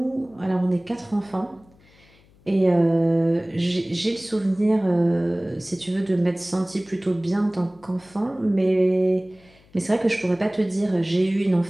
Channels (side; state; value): left; noise; hum, 29 dB below the sound